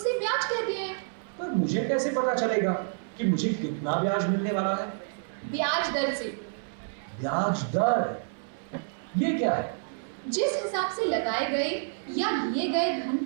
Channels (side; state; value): left; silent; 59 dB below the other